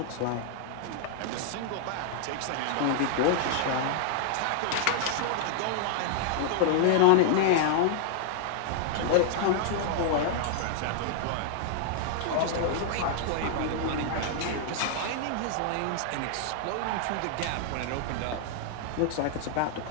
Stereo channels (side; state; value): both; different; correlation 0.00